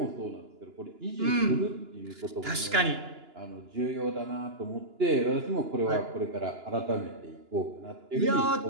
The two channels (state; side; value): late; left; 2.9 ms